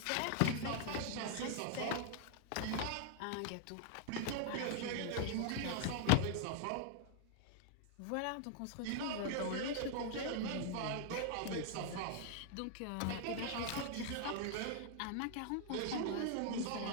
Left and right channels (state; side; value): different; both; correlation 0.00